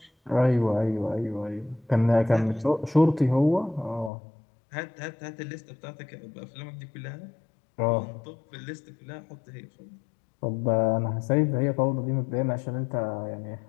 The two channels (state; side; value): drops out; right; at 4.1 s